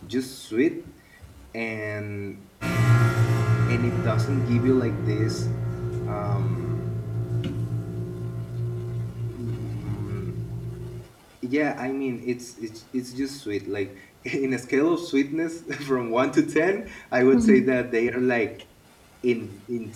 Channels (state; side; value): identical; both; correlation 1.00